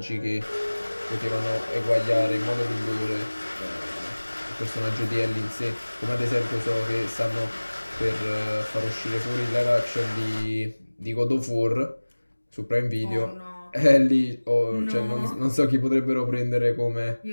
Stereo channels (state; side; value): inverted; both; correlation -1.00